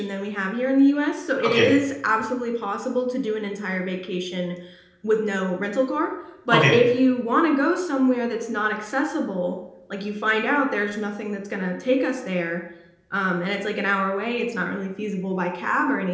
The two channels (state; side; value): identical; both; correlation 1.00